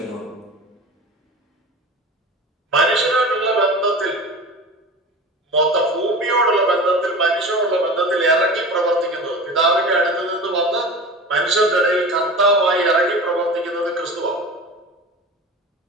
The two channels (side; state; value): both; normal; correlation 0.34